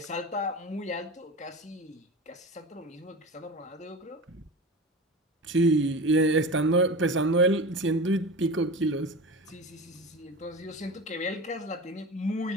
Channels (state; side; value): normal; both; correlation 0.30